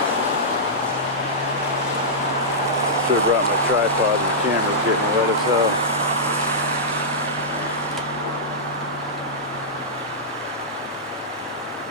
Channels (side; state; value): both; normal; correlation -0.12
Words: Should have brought my tripod, and the camera's getting wet as hell.